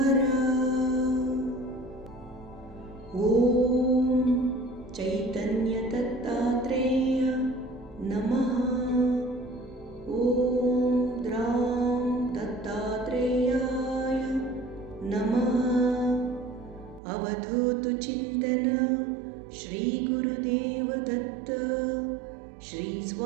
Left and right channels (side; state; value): left; drops out; at 17.0 s